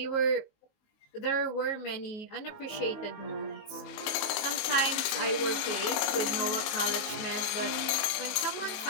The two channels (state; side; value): late; right; 20 ms